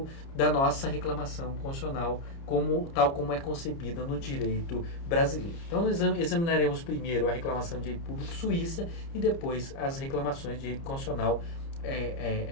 da nossa reclamação constitucional, tal como é concebida no direito brasileiro. Então, nós examinaremos primeiro a reclamação de direito público suíça e depois as reclamações de direito constitucional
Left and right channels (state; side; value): late; right; 30 ms